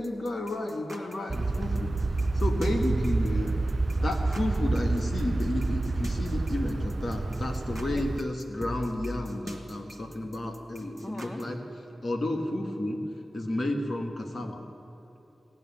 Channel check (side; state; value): both; normal; correlation 0.94